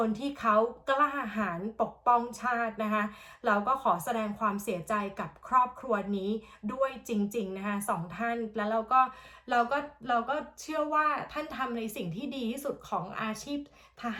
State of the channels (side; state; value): both; identical; correlation 1.00